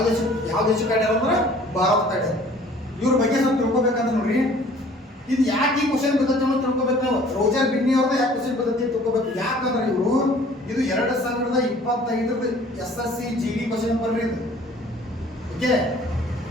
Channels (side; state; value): both; normal; correlation 0.52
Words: ದೇಶಕ್ಕೆ ಆಡ್ಯಾರ ಅಂದ್ರೆ ಭಾರತ ಆಡ್ಯಾರ. ಇವ್ರ ಬಗ್ಗೆ ಸ್ವಲ್ಪ ತಿಳ್ಕೊಬೇಕಂತ ನೋಡ್ರಿ. ಇದು ಯಾಕೆ ಈ ಕ್ವಶನ್ ಪದ್ಧತಿ ತಿಳ್ಕೊಬೇಕು ನಾವು? ರೋಜರ್ ಬಿನ್ನಿ ಅವ್ರದ್ದು ಯಾಕೆ ಕ್ವಶನ್ ಪದ್ಧತಿ ತಿಳ್ಕೊಬೇಕು? ಯಾಕಂದ್ರೆ ಇವರು ಇದು 2025 SSC GD ಕ್ವಶನ್ ಪೇಪರ್ ಇದು. Okay,